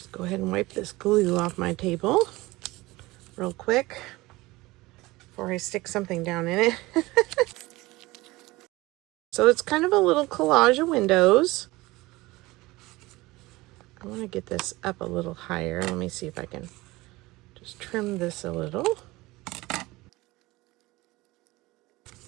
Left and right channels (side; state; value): left; quieter; 20.5 dB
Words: go ahead and wipe this glue off my table real quick before I stick something down in it. So it's kind of a little collage of windows. I want to get this up a little higher. Let me see if I can just trim this a little.